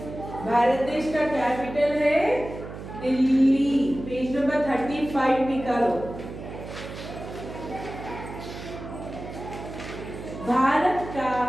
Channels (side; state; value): right; noise; hum, 11 dB below the sound